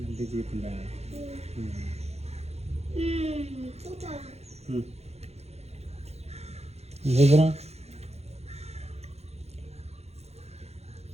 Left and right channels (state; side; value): late; left; 0.31 ms